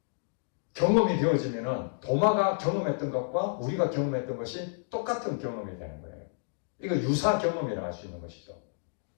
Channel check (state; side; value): silent; right; digital silence